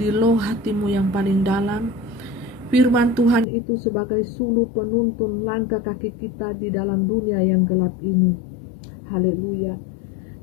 loh hatimu yang paling dalam. Firman Tuhan itu sebagai suluh penuntun langkah kaki kita di dalam dunia yang gelap ini. Haleluya.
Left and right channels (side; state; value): right; drops out; at 3.5 s